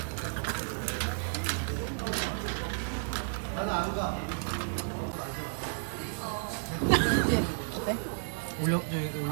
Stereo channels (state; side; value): silent; left; digital silence